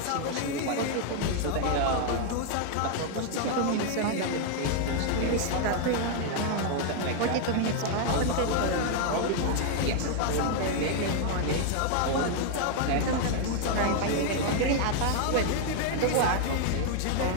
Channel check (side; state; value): both; different; correlation 0.00